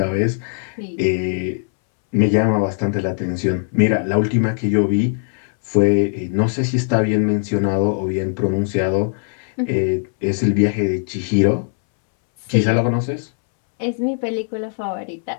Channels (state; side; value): silent; right; 64 dB below the other